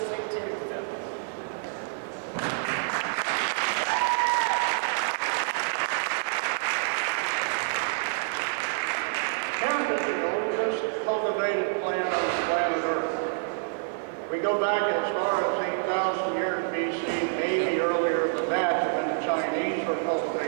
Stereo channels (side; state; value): left; silent; 55 dB below the other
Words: too. So. Hemp is the oldest cultivated plant on the planet Earth. We go back as far as 8,000 years BC, maybe earlier than that, when the Chinese were